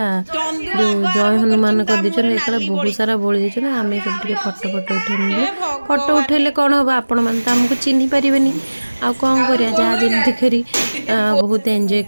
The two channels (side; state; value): both; inverted; correlation -1.00